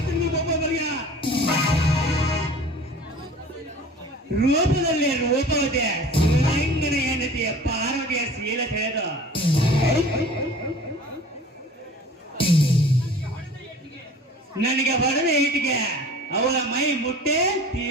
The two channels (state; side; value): normal; both; correlation 0.44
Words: ರೂಪದಲ್ಲಿ ರೂಪವತೆ ಶಿವಲಿಂಗನ ಹೆಂಡತಿಯ ಪಾರ್ವತಿಯ ಶೀಲ ತಿಳಿದು ನನಗೆ ಹೊಡೆದ ಈಟಿಗೆ ಅವಳ ಮೈ ಮುಟ್ಟೆ